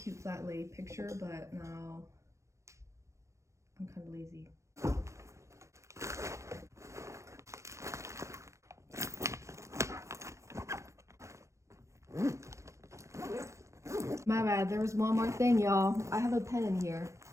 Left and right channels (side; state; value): left; late; 0.14 ms